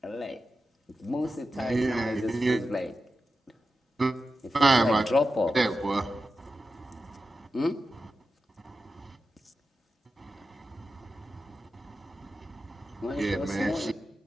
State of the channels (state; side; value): normal; both; correlation 0.91